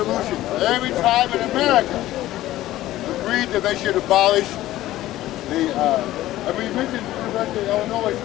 Every tribe in America agreed that they should abolish the, we mentioned the University of Illinois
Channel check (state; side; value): quieter; right; 15.1 dB